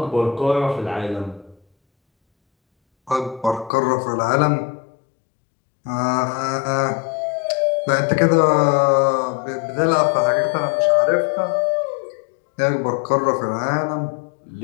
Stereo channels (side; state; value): right; drops out; at 3.7 s